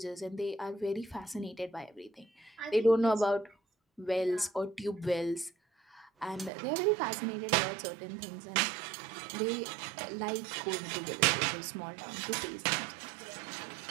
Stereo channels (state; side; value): drops out; left; at 6.5 s